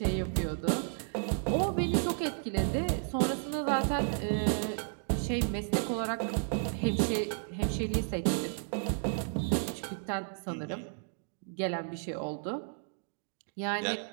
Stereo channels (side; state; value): left; silent; 56 dB below the other